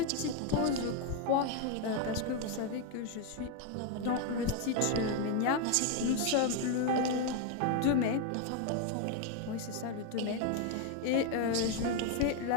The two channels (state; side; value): different; both; correlation 0.01